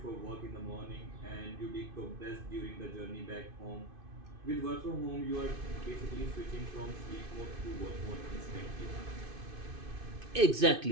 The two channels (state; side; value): late; left; 2.5 ms